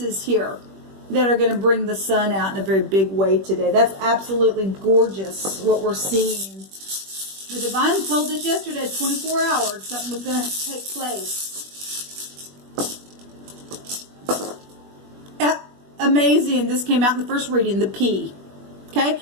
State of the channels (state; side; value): late; left; 21 ms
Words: here that are going to bring the Sun out in a very big way today. That's absolutely gorgeous what we're seeing. The Divine told us yesterday, 24 hours, something was going to take place. Amazing. This came out in the first reading, the P. Okay?